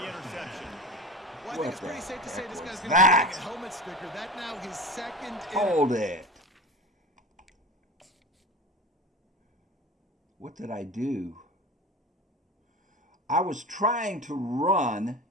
interception. Well, I think it's pretty safe to say this guy's going to that? get a helmet sticker. That now his 2nd. Hold it. What did I do? I was trying to run.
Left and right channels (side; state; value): both; normal; correlation 0.31